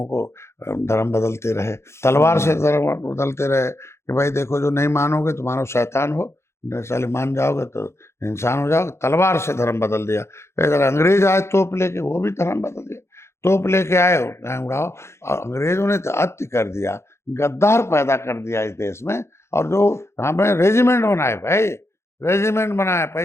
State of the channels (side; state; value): right; late; 0.13 ms